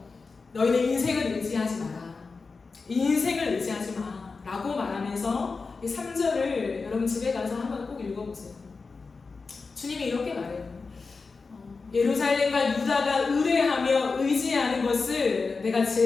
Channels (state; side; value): quieter; right; 4.4 dB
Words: 너희는 인생을 의지하지 마라. 인생을 의지하지 마. 라고 말하면서 3절을 여러분 집에 가서 한번 꼭 읽어보세요. 주님이 이렇게 말해요. 예루살렘과 유다가 의뢰하며 의지하는 것을 내가